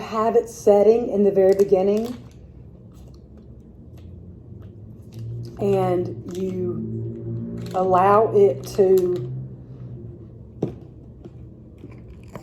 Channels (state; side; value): identical; both; correlation 1.00